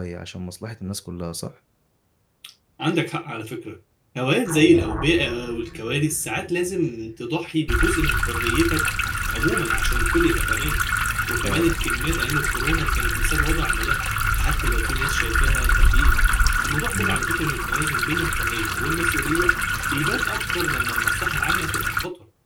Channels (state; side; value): identical; both; correlation 1.00